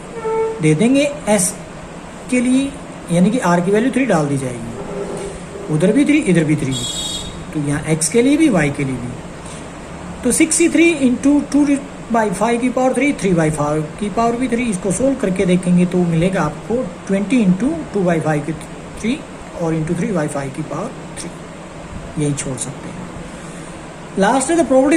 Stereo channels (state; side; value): identical; both; correlation 1.00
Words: दे देंगे s के लिए, यानी कि r की वैल्यू 3 डाल दी जाएगी, उधर भी 3 इधर भी 3, तो यहाँ x के लिए भी y के लिए भी, तो 63 इंटू 2/5 की पावर 3, 3/5 की पावर भी 3, इसको सोल्व करके देखेंगे तो मिलेगा आपको 20 इंटू 2/5 की 3 और इंटू 3/5 की पावर 3, यही छोड़ सकते हैं। लास्ट है the